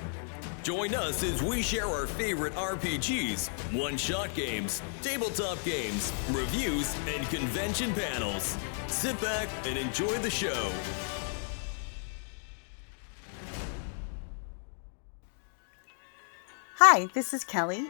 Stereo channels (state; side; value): silent; right; 56 dB below the other